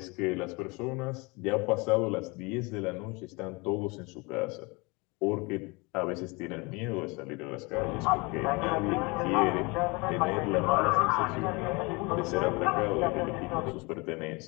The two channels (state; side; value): quieter; right; 27.1 dB